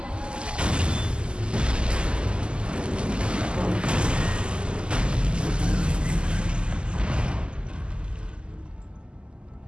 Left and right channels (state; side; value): late; left; 0.050 ms